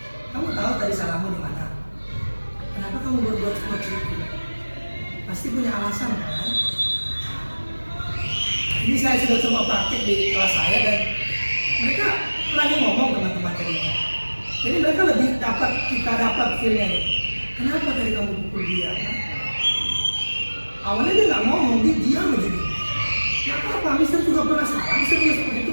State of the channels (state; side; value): inverted; both; correlation -1.00